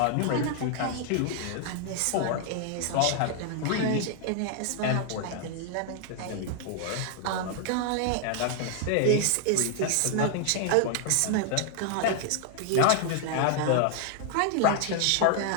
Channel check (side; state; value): both; different; correlation 0.00